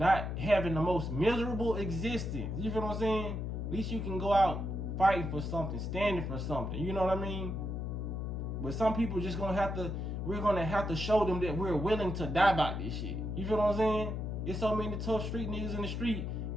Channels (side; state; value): left; noise; hum, 3 dB below the sound